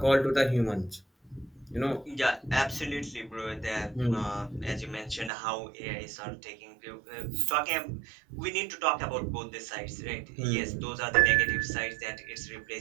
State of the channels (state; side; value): drops out; left; at 5.3 s